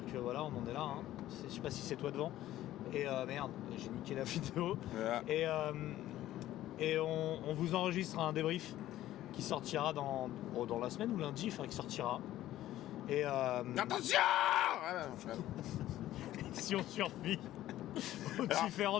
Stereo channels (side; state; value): right; quieter; 14.0 dB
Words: que voilà, on en est là. Hein. Je sais pas si c'est toi devant. Et merde, j'ai niqué la vidéo. Yeah. Et on vous enregistre un débrief qui sortira dans la semaine ou lundi, enfin qui sortira. Et attention. Si on survit aux